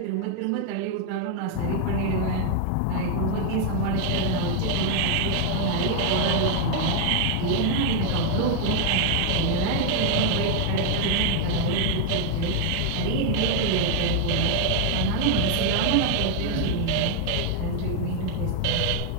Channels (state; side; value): different; both; correlation 0.00